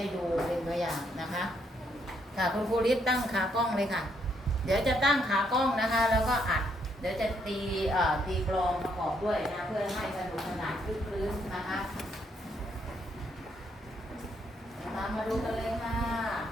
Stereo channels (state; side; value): normal; both; correlation 0.73